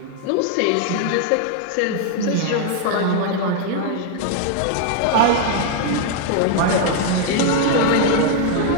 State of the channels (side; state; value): both; different; correlation 0.00